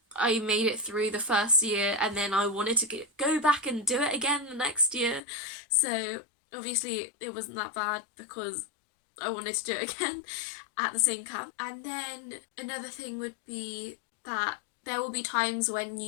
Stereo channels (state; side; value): drops out; right; at 5.2 s